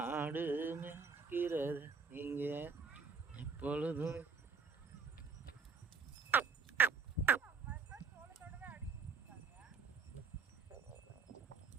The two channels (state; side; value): quieter; left; 5.4 dB